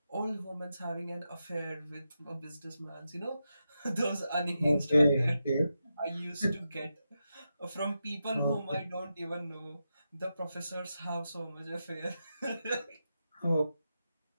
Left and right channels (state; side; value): inverted; both; correlation -0.88